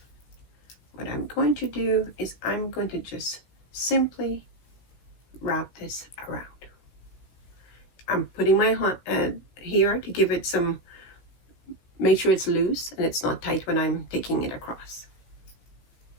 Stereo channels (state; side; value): late; right; 16 ms